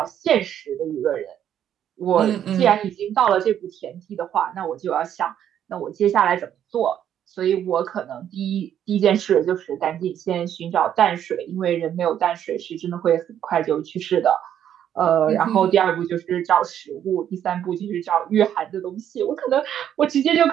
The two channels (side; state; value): left; quieter; 10.0 dB